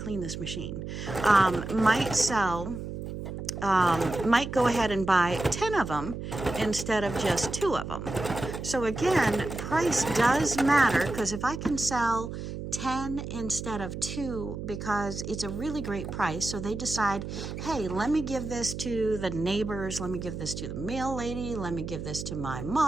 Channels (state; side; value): noise; right; hum, 7 dB below the sound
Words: this machine. Might go ahead and buy 10 of them instead of just 2 of them. So again, price does matter, because if I can sell 10 instead of 2 because it's a really great price, so they decide, hey, let me give this to the neighbors, let me give this to the mail lady, let me give this to my